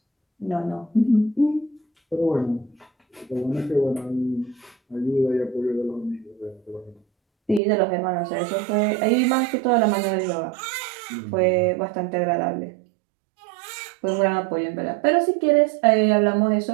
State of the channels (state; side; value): drops out; left; at 7.6 s